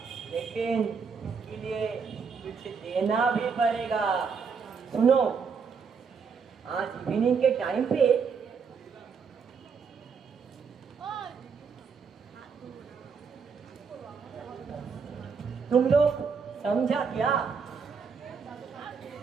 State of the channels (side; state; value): left; quieter; 5.8 dB